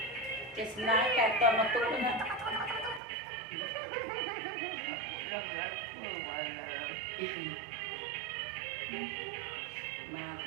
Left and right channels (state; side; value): drops out; left; at 3.0 s